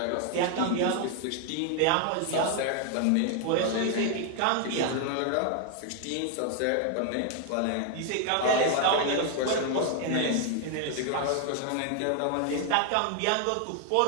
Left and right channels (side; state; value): both; different; correlation 0.00